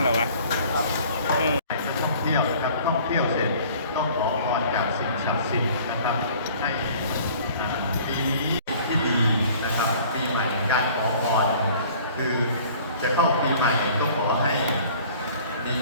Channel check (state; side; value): inverted; both; correlation -0.51